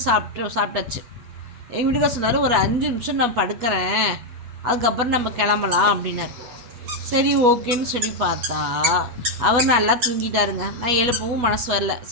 சாப்பிட்டாச்சு. எங்கள் வீட்டுக்கார சொன்னார், ஒரு 5 நிமிஷம் நான் படுக்கிறேன், அதுக்கப்புறம் நம்ம கிளம்பலாம் அப்படின்னாரு. சரி, ஓகேன்னு சொல்லி பார்த்தா அவர் நல்லா தூங்கிட்டாருங்க. நான் எழுப்பவும் மனசு வரல.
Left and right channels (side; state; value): left; late; 8.2 ms